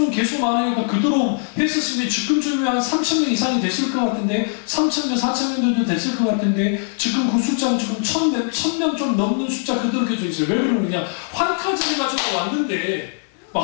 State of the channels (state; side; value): silent; right; 65 dB below the other